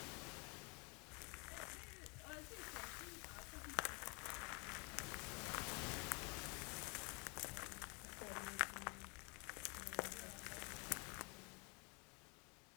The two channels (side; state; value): right; quieter; 32.6 dB